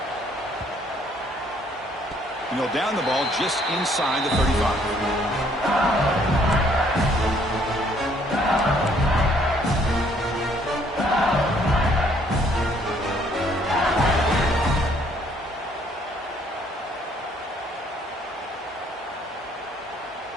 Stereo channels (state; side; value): normal; both; correlation 0.64